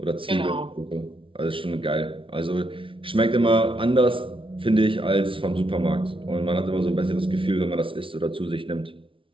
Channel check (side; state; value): left; late; 0.25 ms